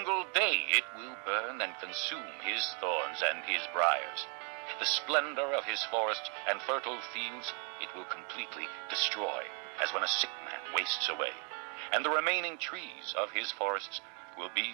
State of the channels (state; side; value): quieter; left; 38.2 dB